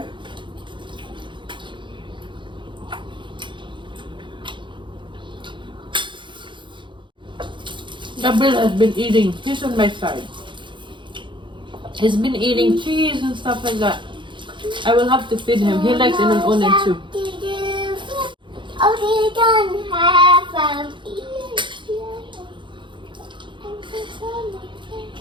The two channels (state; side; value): late; left; 0.23 ms